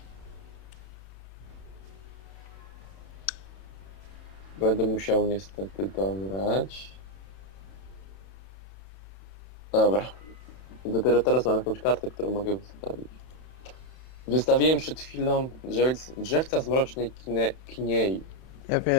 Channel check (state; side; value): late; right; 31 ms